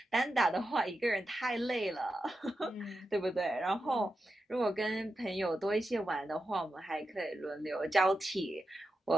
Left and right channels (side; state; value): both; normal; correlation 0.89